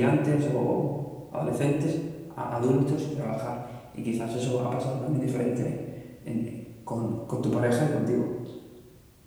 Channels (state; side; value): identical; both; correlation 1.00